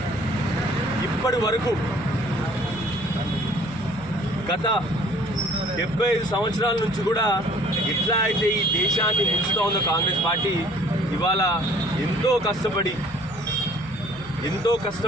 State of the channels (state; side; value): noise; left; hum, 20 dB below the sound